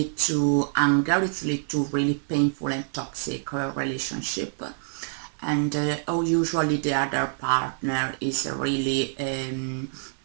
to anger, it leads to really painful and toxic relationship. And usually the other partner is really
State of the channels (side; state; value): left; silent; 61 dB below the other